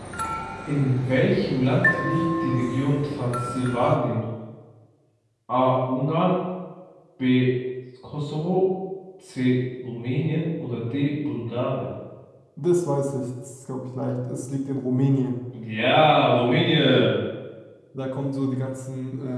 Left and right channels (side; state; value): both; identical; correlation 1.00